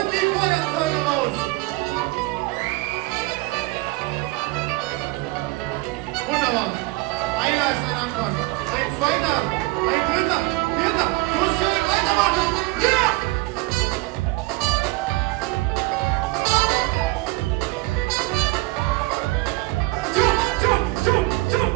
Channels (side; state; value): left; quieter; 21.9 dB